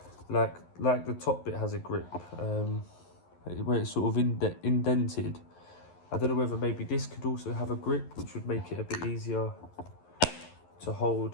Like the top bit has a grip, where it's sort of indented. I don't know whether maybe this could also have a grip, which would make it a bit easier to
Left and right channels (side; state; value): right; late; 11 ms